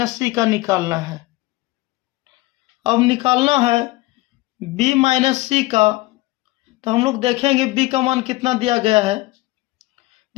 c का निकालना है। अब निकालना है b माइनस c का। तो हम लोग देखेंगे b का मान कितना दिया गया है,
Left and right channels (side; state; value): right; quieter; 20.3 dB